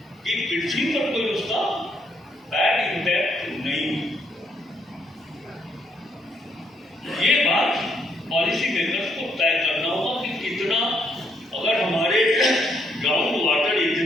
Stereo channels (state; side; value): normal; both; correlation 0.73